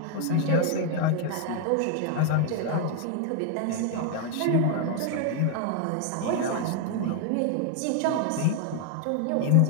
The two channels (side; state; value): both; different; correlation 0.00